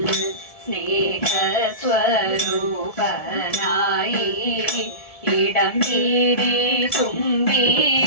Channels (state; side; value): late; right; 1.7 ms